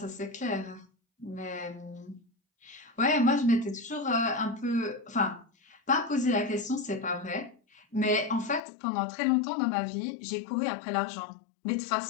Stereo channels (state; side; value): drops out; right; at 8.6 s